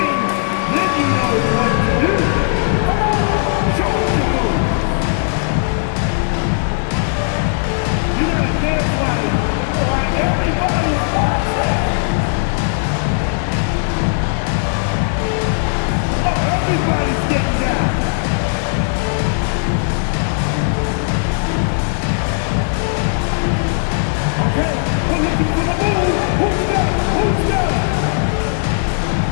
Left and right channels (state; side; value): silent; right; 60 dB below the other